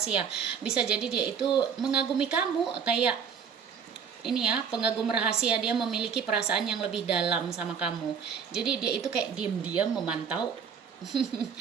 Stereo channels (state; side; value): quieter; left; 6.8 dB